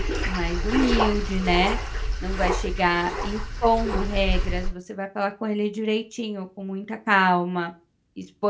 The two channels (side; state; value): both; identical; correlation 1.00